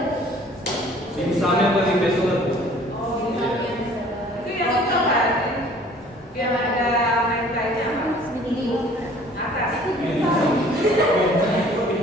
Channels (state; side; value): normal; both; correlation 0.52